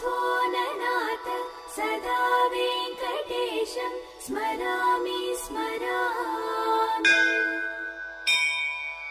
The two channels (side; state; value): both; identical; correlation 1.00